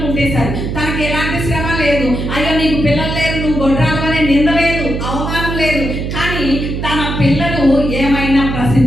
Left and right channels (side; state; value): right; noise; hum, 4 dB below the sound